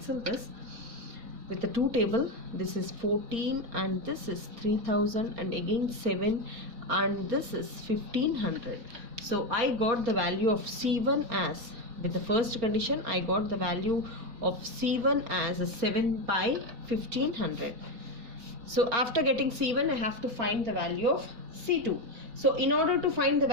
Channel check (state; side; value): late; left; 4.3 ms